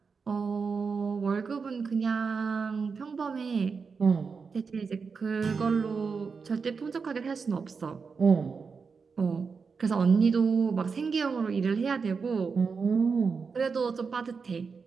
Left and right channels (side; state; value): left; quieter; 5.2 dB